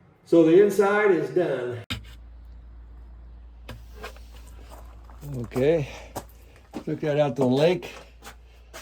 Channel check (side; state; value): both; identical; correlation 1.00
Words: So the inside is done. Okay, took that out to the lake.